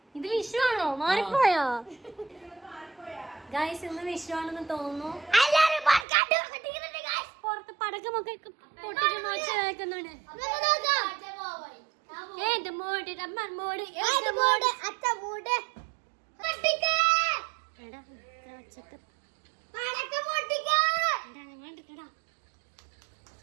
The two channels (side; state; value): left; drops out; at 6.1 s